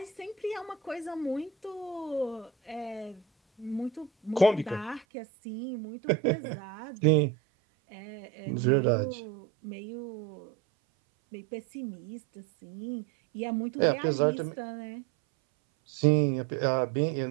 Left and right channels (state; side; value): drops out; left; at 5.1 s